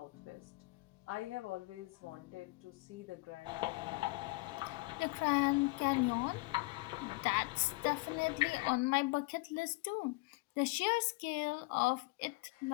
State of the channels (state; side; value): quieter; right; 24.1 dB